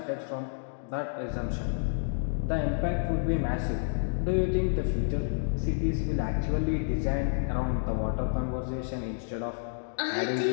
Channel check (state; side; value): silent; right; digital silence